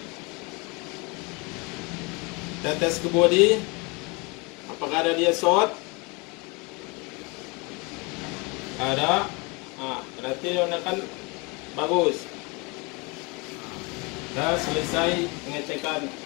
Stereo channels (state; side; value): quieter; right; 28.6 dB